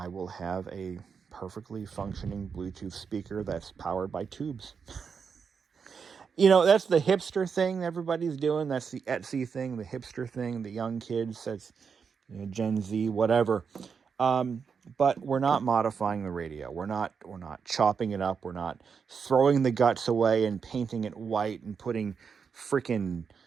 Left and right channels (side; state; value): left; quieter; 6.1 dB